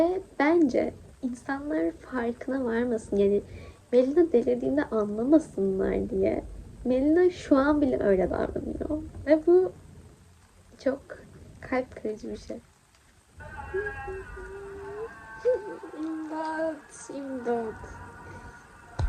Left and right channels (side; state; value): both; identical; correlation 1.00